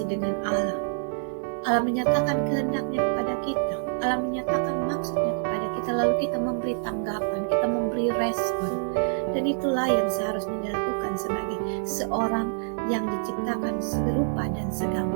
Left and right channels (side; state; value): left; silent; digital silence